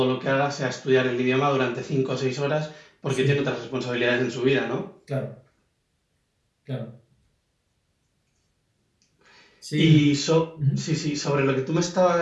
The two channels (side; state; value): both; identical; correlation 1.00